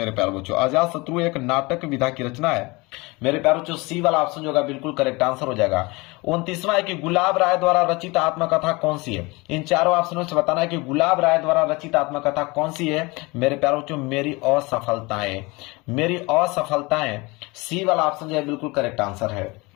प्यारे बच्चों। अजात शत्रु एक नाटक विधा की रचना है मेरे प्यारे बच्चों। सी वाला ऑप्शन जो होगा बिल्कुल करेक्ट आंसर हो जाएगा। 29वां है कि गुलाब राय द्वारा रचित आत्मकथा कौन सी है? इन चारों ऑप्शनों से बताना है कि गुलाब राय द्वारा रचित आत्मकथा कौन सी है मेरे प्यारे बच्चों। मेरी असफलताएं। मेरी असफलताएं। सी वाला ऑप्शन जो है बिल्कुल करेक्ट आंसर है।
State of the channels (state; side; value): quieter; right; 24.8 dB